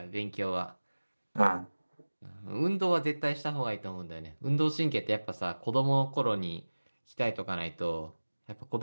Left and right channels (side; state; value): both; inverted; correlation -1.00